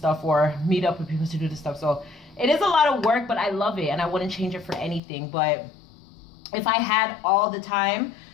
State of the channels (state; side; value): drops out; right; at 5.0 s